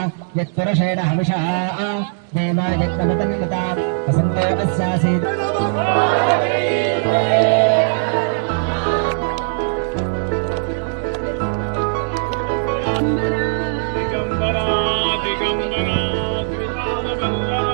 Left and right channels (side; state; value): left; silent; digital silence